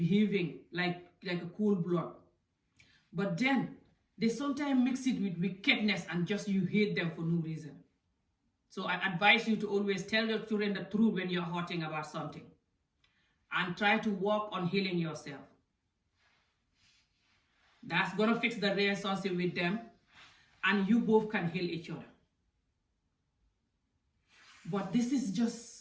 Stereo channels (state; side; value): identical; both; correlation 1.00